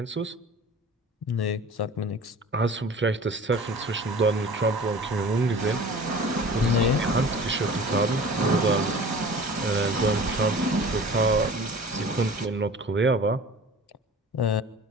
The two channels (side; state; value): both; normal; correlation 0.42